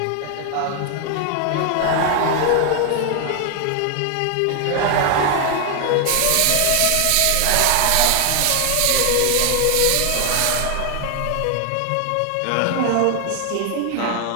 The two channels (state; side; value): different; both; correlation 0.00